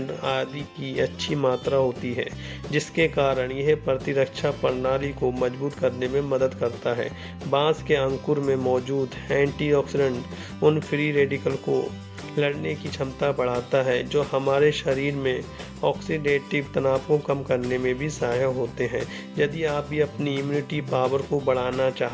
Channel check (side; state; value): both; identical; correlation 1.00